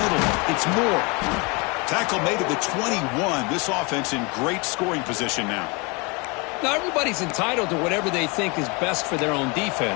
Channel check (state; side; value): quieter; right; 29.3 dB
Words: middle. It's Moore. Tackle made at the 21. This offense in great scoring position now. Now, everybody's entitled to whatever they think is best for their own